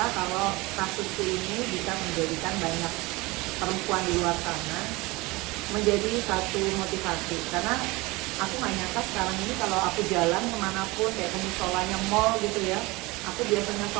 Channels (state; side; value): quieter; left; 22.9 dB